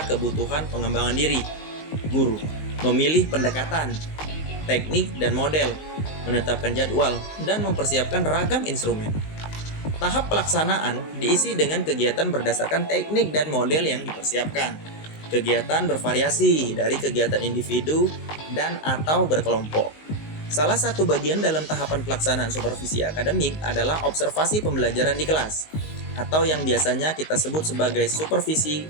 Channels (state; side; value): late; right; 19 ms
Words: kebutuhan pengembangan diri, guru, memilih pendekatan, teknik, dan model, menetapkan jadwal, dan mempersiapkan ragam instrumen. Tahap pelaksanaan diisi dengan kegiatan berdasarkan teknik dan model yang dipersiapkan. Kegiatan bervariasi dari kegiatan individu dan atau berkelompok. Salah satu bagian dalam tahapan pelaksanaan supervisi akademik adalah observasi pembelajaran di kelas, atau yang biasanya kita sebut sebagai supervisi